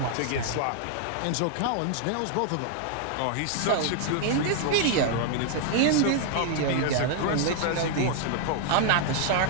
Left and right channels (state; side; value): different; both; correlation 0.00